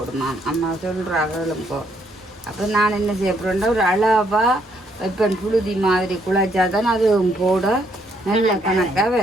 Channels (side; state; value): both; normal; correlation 0.71